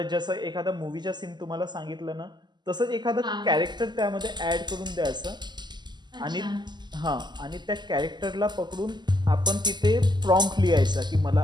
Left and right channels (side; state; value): left; late; 0.21 ms